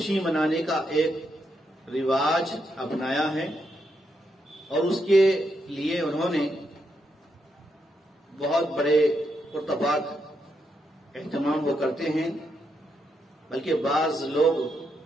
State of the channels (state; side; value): normal; both; correlation 0.81